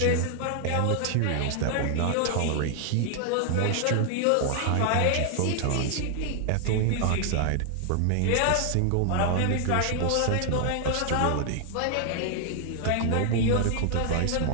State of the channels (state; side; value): different; both; correlation 0.00